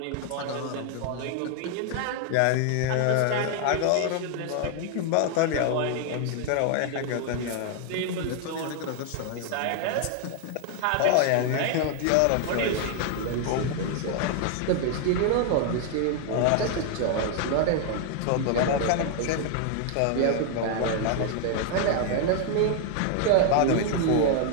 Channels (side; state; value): both; different; correlation 0.00